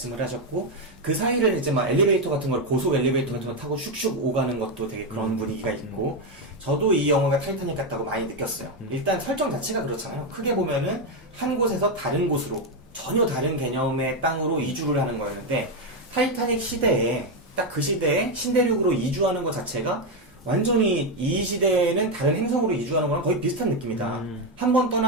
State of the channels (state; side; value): normal; both; correlation 0.06